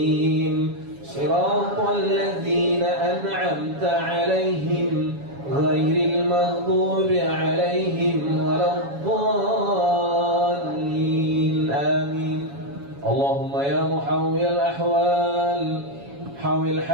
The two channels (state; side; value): late; left; 7.2 ms